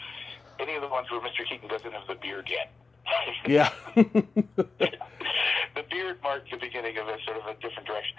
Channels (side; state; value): right; quieter; 4.1 dB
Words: any of the ones where Mr. Keaton doesn't have the beard yet. Yeah. The beard marked the beginning of a sort of a different direction.